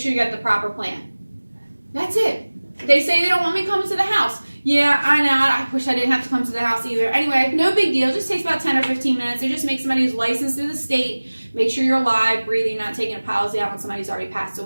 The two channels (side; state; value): both; inverted; correlation -1.00